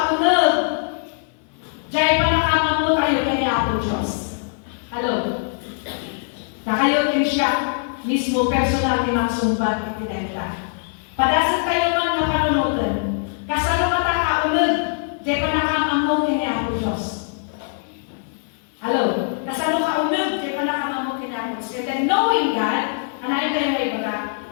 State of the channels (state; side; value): silent; right; 59 dB below the other